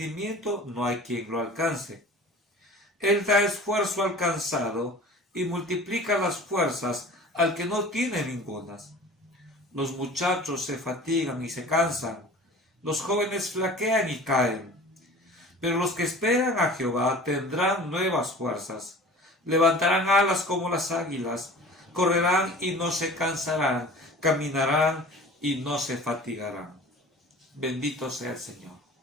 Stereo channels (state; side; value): normal; both; correlation 0.41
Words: no hay quien lo alcance. Él da esfuerzo al cansado y multiplica las fuerzas al que no tiene ningunas. Los muchachos se fatigan y se cansan, los jóvenes flaquean y caen. Pero los que esperan a Jehová tendrán nuevas fuerzas, levantarán alas como las águilas, correrán y no se cansarán, caminarán y no se fatigarán. Bendito sea el Señor.